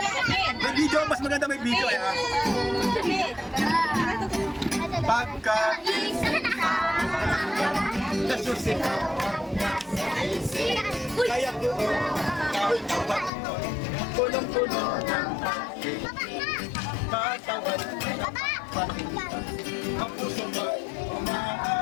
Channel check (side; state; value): right; drops out; at 13.3 s